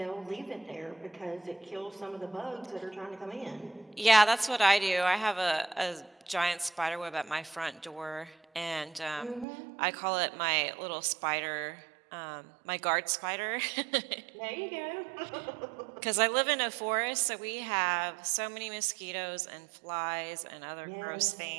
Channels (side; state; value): left; drops out; at 9.5 s